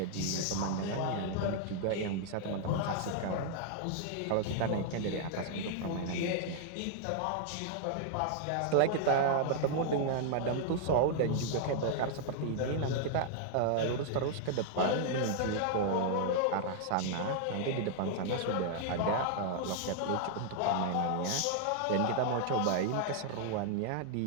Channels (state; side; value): different; both; correlation 0.00